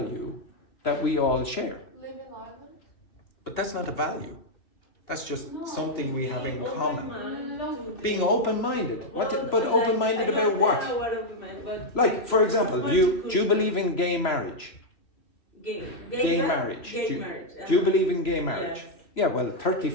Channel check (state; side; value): late; right; 3.0 ms